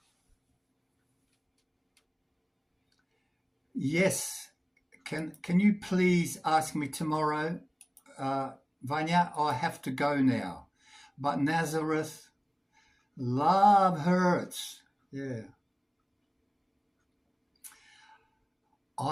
Yes. Can you please ask me tomorrow, Vanya? I have to go now. But Nazareth, love hurts. Yeah.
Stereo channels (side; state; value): both; identical; correlation 1.00